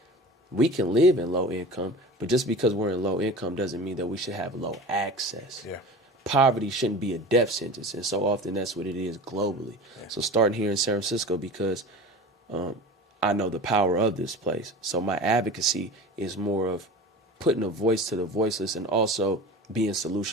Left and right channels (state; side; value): normal; both; correlation 0.36